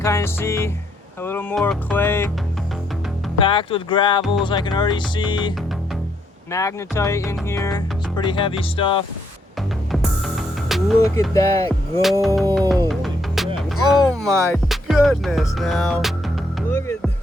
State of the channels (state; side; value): normal; both; correlation 0.73